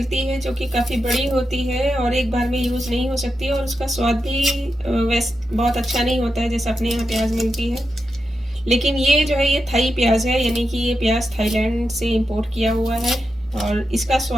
है जो कि काफ़ी बड़ी होती है और एक बार में यूज़ नहीं हो सकती, और उसका स्वाद भी वैसे बहुत अच्छा नहीं होता है जैसा अपने यहाँ प्याज मिलती है। लेकिन ये जो है ये थाई प्याज है, यानी कि ये प्याज थाईलैंड से इंपोर्ट किया हुआ है, और इसका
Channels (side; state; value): both; normal; correlation 0.88